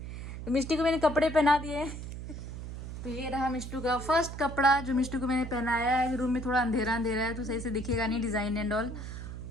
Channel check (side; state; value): right; noise; hum, 8 dB below the sound